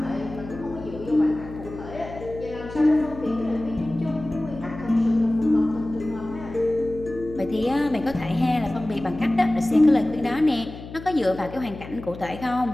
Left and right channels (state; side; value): noise; left; hum, 13 dB below the sound